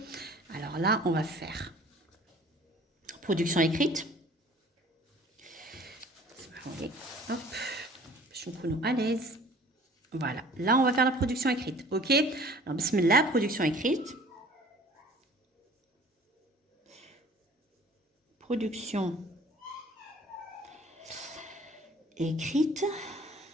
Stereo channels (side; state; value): both; normal; correlation 0.50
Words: Alors là, on va faire production écrite. Hop, je suis à l'aise. Voilà, là, on va faire la production écrite. OK? Alors, bismillah, production écrite. Production écrite.